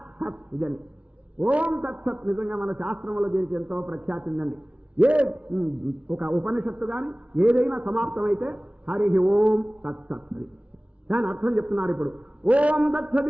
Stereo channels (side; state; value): left; late; 0.063 ms